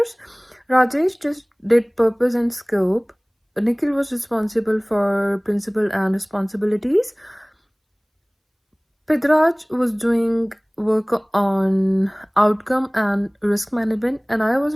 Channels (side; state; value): both; identical; correlation 1.00